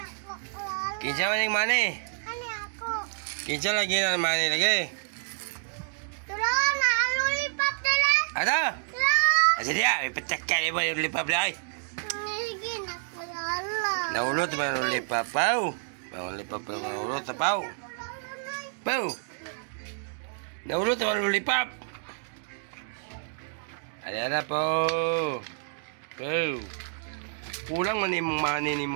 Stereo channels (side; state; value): left; silent; digital silence